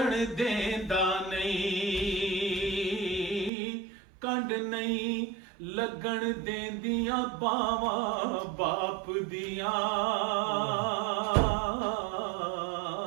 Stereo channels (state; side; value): drops out; left; at 3.5 s